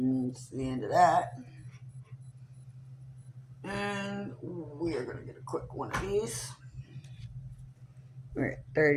the end of that. And we are going to get a quick one of these. We're at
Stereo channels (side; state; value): both; identical; correlation 1.00